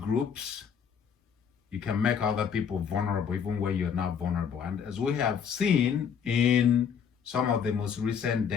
you can make other people vulnerable even when you're not vulnerable. And as we have seen in some of the most recent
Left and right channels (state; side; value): quieter; right; 7.3 dB